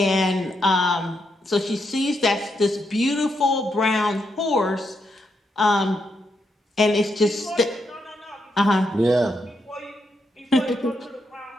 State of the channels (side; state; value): both; normal; correlation 0.81